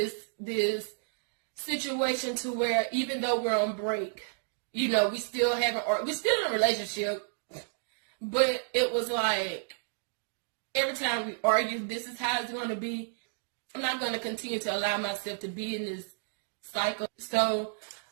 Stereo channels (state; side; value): silent; left; digital silence